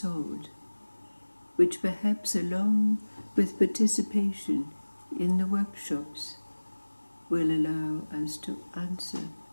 which perhaps, along with participation in the workshops, will allow us to answer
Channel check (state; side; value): inverted; both; correlation -1.00